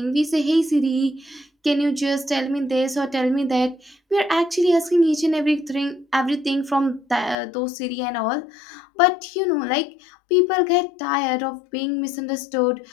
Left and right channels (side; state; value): right; drops out; at 7.4 s